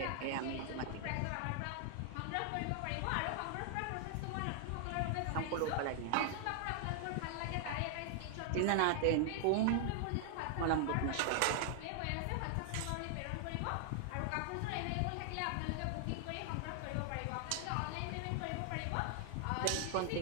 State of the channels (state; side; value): different; both; correlation 0.00